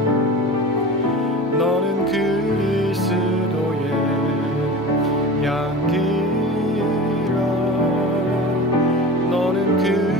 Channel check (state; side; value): normal; both; correlation 0.34